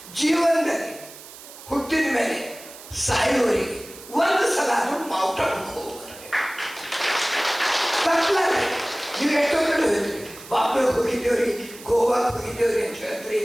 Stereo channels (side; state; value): right; noise; hiss, 17 dB below the sound